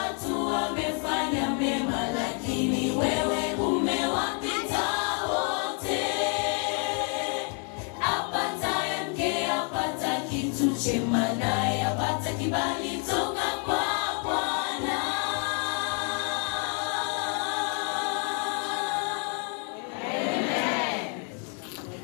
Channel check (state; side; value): quieter; right; 39.6 dB